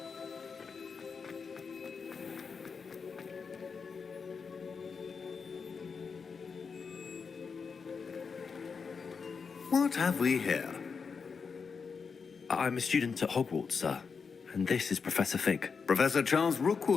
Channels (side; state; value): right; quieter; 5.5 dB